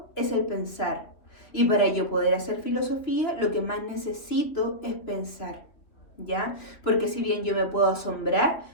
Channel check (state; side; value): late; right; 3.1 ms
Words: es el pensar. Y para yo poder hacer filosofía, lo que más necesito es pensar, ¿ya? Porque si bien yo me puedo asombrar,